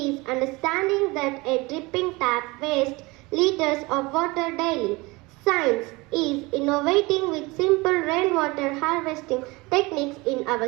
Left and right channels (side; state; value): left; quieter; 23.7 dB